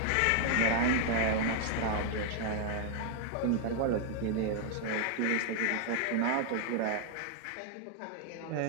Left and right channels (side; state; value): both; different; correlation 0.00